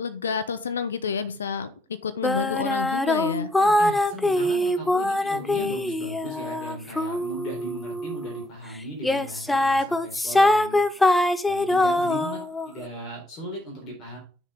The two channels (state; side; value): normal; both; correlation 0.72